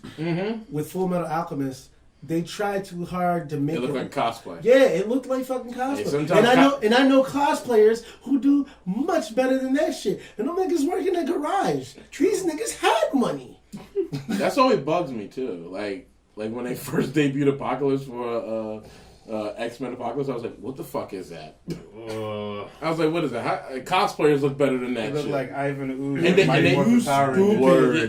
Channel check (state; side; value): identical; both; correlation 1.00